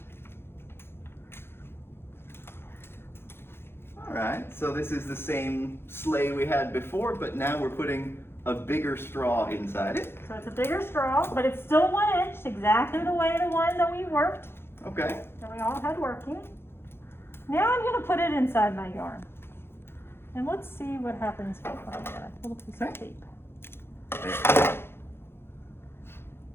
All right, so this is the same sleigh we had before, but now we're putting a bigger straw inside it. So it's a bigger straw, but it's still 1 inch, exactly the way the one that we worked, Okay. that we all had working. Now I'm going to put it inside my yarn. And let's see what happens when I get a little piece of tape. There.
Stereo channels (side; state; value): right; late; 0.11 ms